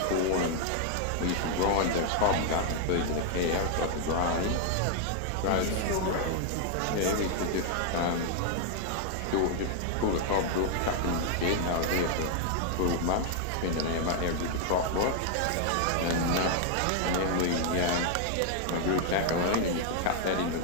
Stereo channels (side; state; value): both; different; correlation 0.00